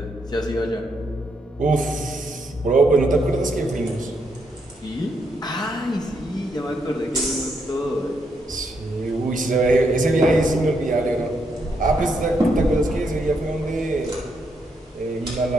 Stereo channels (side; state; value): both; normal; correlation 0.78